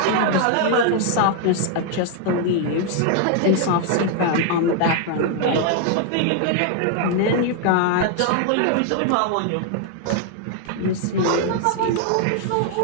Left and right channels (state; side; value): different; both; correlation 0.00